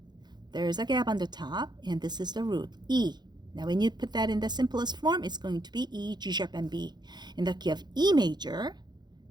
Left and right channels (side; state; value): left; late; 0.21 ms